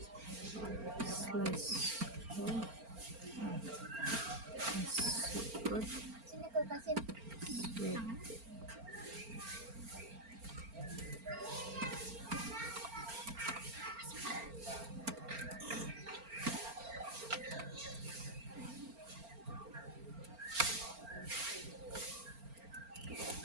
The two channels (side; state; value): left; late; 4.4 ms